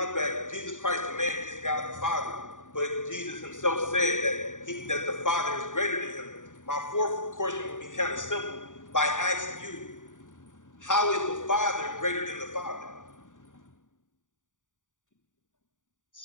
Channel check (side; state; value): right; late; 0.87 ms